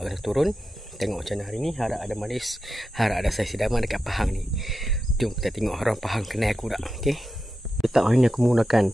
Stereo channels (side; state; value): both; normal; correlation 0.90